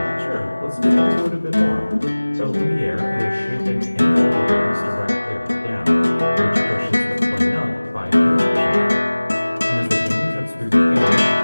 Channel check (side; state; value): both; inverted; correlation -1.00